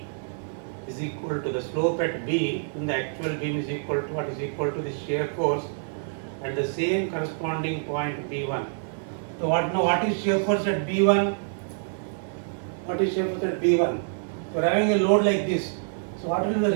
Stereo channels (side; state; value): left; silent; digital silence